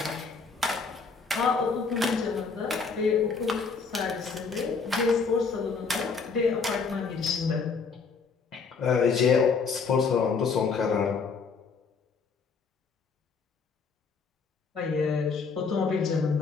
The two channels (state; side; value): quieter; right; 5.1 dB